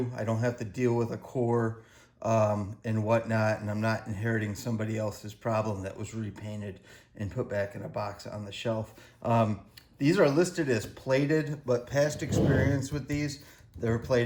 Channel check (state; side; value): identical; both; correlation 1.00